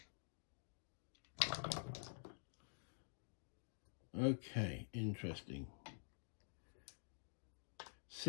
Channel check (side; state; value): right; silent; digital silence